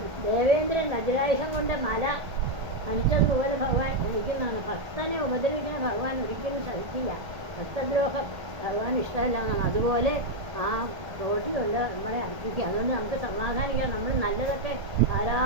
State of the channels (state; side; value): late; left; 1.5 ms